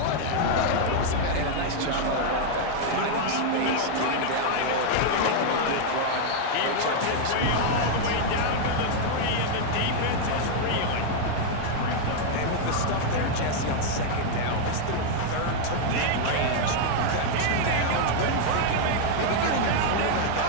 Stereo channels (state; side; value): different; both; correlation 0.00